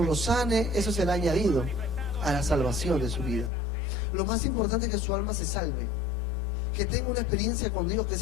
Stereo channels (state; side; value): drops out; right; at 3.5 s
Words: sane. Eso será añadido a la salvación de su vida. Lo más importante es que su alma se salve, que tenga una experiencia con Dios, que